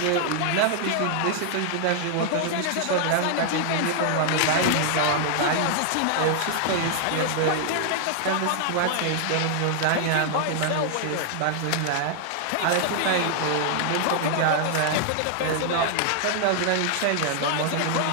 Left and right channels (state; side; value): different; both; correlation 0.00